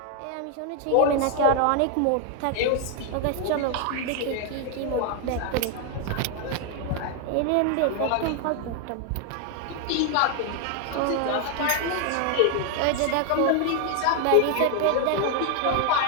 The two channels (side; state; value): both; different; correlation 0.00